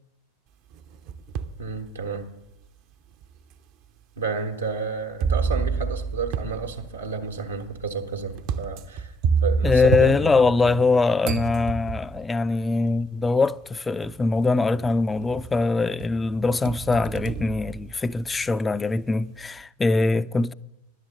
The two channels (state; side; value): normal; both; correlation 0.77